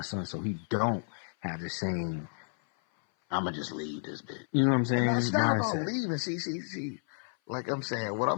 son so he don't have the same, I'm going to just leave this bit. You know what I'm saying? And that's not about leaving. See. Like I'm saying, what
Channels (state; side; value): silent; right; 56 dB below the other